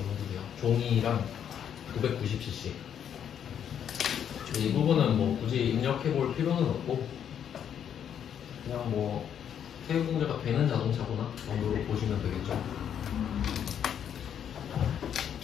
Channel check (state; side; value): quieter; right; 8.9 dB